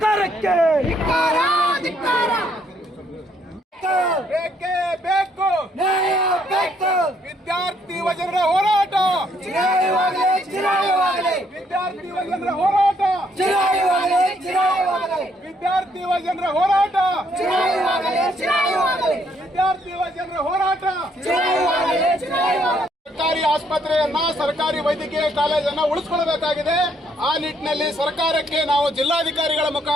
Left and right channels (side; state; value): both; normal; correlation 0.70